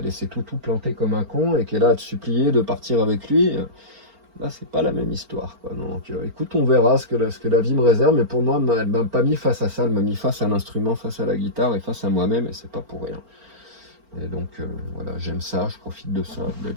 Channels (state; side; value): late; left; 4.4 ms